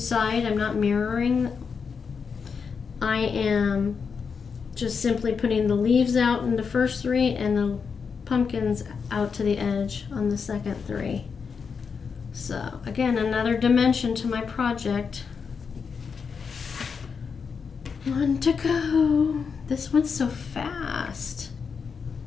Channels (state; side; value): quieter; right; 5.8 dB